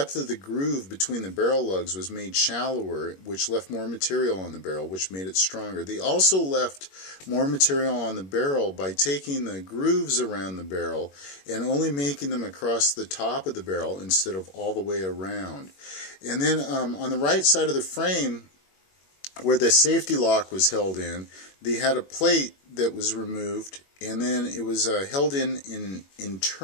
of the groove between the barrel lugs was made shallower, which left more material on the barrel, which made it stronger. They also left more material on the barrel by taking the grooves around the barrel and only making them across the top of the barrel instead of all the way around. And then on the right side of the frame, where the safety lock was held in, they had a plate that was removed, and then it was held in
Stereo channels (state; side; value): late; right; 21 ms